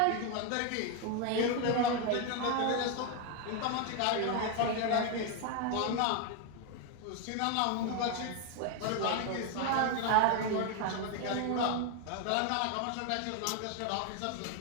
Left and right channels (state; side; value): different; both; correlation 0.01